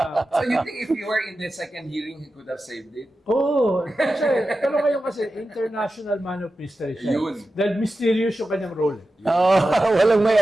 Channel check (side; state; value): both; normal; correlation 0.92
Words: you think if you were in the second hearing, he could have saved it? Oo. Pero ngayon kasi, international man of mystery siya. Yun. Dahil mysterious yung kanyang role. Walang may